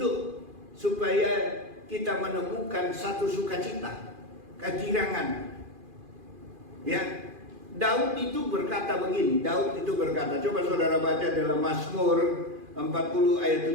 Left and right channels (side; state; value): left; late; 2.4 ms